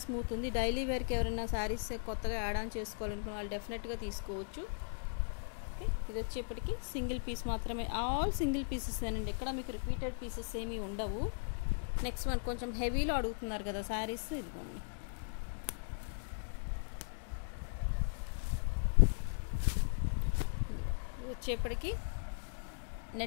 స్మూత్ ఉంది. డైలీ వేర్కి ఎవరైనా శారీస్ కొత్తగా యాడ్ ఆన్ చేసుకోవాలనుకున్న వాళ్ళు డెఫినెట్గా తీసుకోవచ్చు. ఓకే, ఇది వచ్చేప్పటికి సింగిల్ పీస్ మాత్రమే, ఆల్ సింగిల్ పీసెస్ అండి, ఎక్కడ మీకు రిపీటెడ్ పీసెస్ ఏమీ ఉండవు. నెక్స్ట్ వన్ కొంచెం హెవీలో అడుగుతున్నారు కదా శారీస్, ఇదిగోండి. ఇది వచ్చేప్పటికి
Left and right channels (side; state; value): right; silent; digital silence